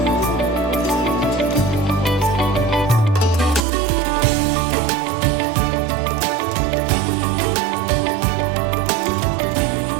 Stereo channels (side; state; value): left; drops out; at 3.6 s